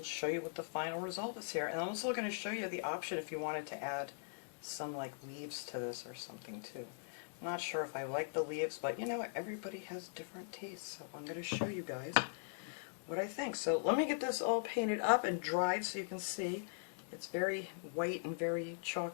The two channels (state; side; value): silent; right; digital silence